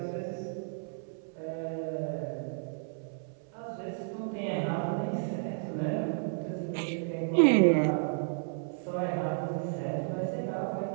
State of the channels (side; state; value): left; silent; 56 dB below the other